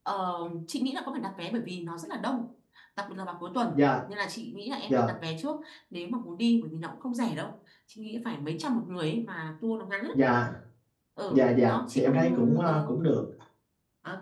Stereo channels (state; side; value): identical; both; correlation 1.00